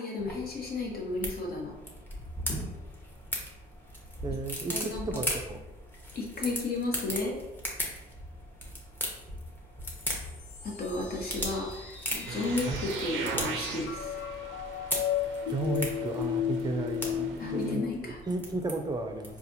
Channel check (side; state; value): both; normal; correlation 0.44